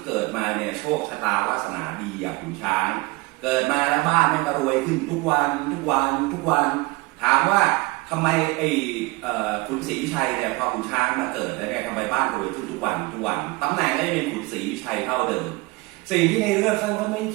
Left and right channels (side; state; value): left; quieter; 23.4 dB